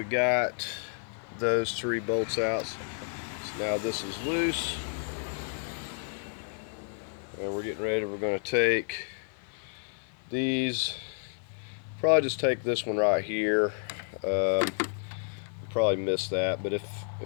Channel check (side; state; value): right; silent; 56 dB below the other